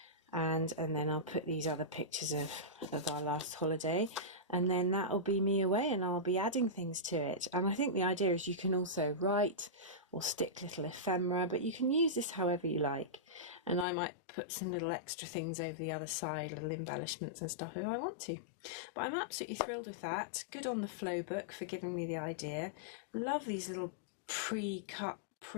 And then I'll put these other pictures of our last holiday, and then that'll be me away, and I'll be adding things to it. And I think the idea is you can also write or stick little ephemera, but you can use this however you like. And I might put some little extra things over the other side, little embellishments and stuff if I want to. But I'm absolutely thrilled with that. Good on the Flow book for giving me the idea. Love these little pre-cut,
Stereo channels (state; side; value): drops out; right; at 13.9 s